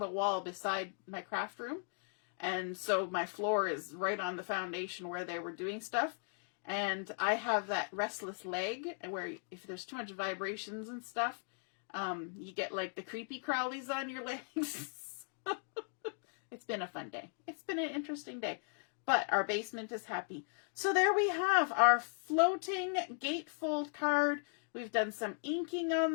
wall beside my craft room. And so my floor is right on the foundation where they were doing stuff. And I have that restless leg where if there's too much vibrations and stuff, you get like the creepy crawlies on your legs. It's been a fun day. It's been an interesting day. But our basement is happy. So there we have our floating gatefold card. We've done some inking on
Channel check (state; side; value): silent; right; 53 dB below the other